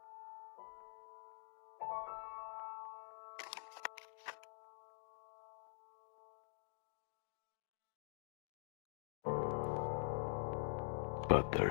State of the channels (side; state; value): right; silent; digital silence